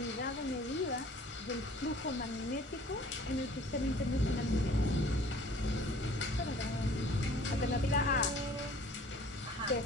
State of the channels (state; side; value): normal; both; correlation 0.51